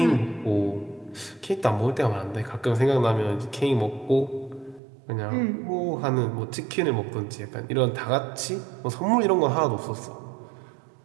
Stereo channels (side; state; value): left; drops out; at 4.8 s